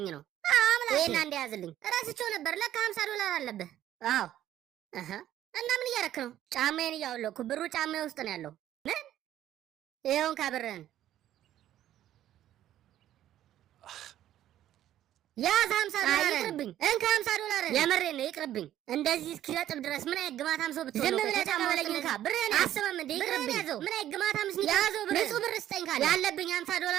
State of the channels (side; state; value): left; quieter; 12.2 dB